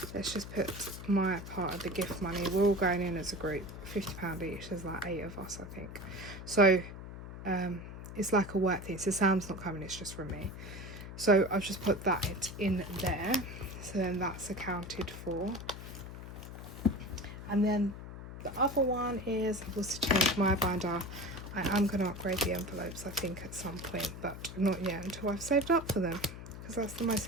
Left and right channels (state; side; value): noise; left; hum, 11 dB below the sound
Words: let's just put my part of the gift money. We're all going in as a group, £50 each. There's like 8 of us, I think. So it's like a work thing. So Sam's not coming, it's just from me. So I've just put that in there. So then that's accounted for. And then the other one is, I've also changed my binder. I am going to upgrade the envelopes, I think, at some point, but not yet until I've saved up for them. Because that's the most